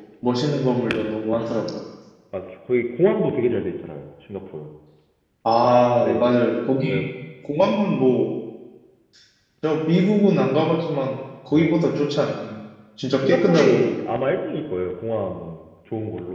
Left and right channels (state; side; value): identical; both; correlation 1.00